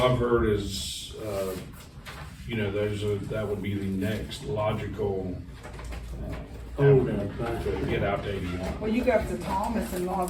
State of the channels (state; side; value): identical; both; correlation 1.00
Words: heard is, you know, that would be the next logical, avenue to get out to 81. Well, you go up to Thomas and all